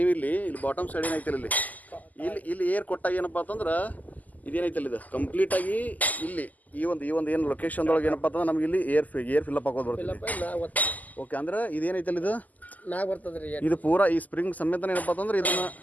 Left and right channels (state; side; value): late; right; 0.080 ms